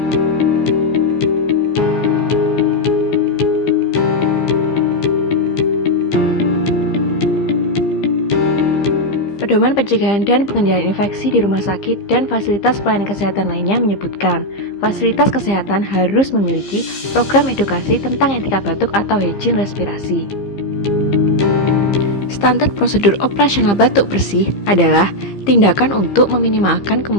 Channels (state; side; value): late; right; 15 ms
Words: pencegahan dan pengendalian infeksi di rumah sakit dan fasilitas pelayanan kesehatan lainnya menyebutkan, fasilitas kesehatan harus memiliki program edukasi tentang etika batuk atau hygiene respirasi. Standar prosedur operasional batuk bersih adalah tindakan untuk meminimalkan